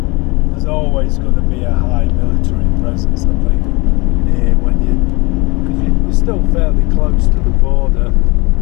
There's always going to be a high military presence, I think, near when because you're still fairly close to the border.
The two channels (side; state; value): right; quieter; 25.8 dB